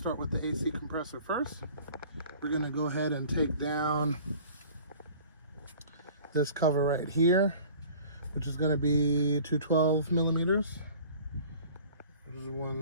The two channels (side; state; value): both; inverted; correlation -0.46